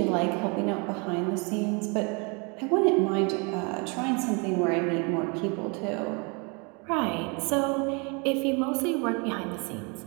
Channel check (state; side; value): quieter; left; 31.9 dB